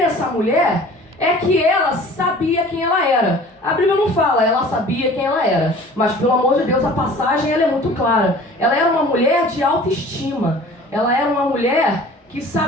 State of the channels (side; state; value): both; normal; correlation 0.46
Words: mulher é que ela sabia quem ela era. A Bíblia não fala, ela sabia quem ela era. Mas, pelo amor de Deus, a passagem ela é muito clara. Ela era uma mulher de autoestima. Ela era uma mulher que